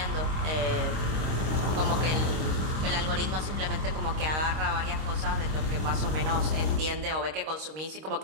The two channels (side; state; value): left; late; 26 ms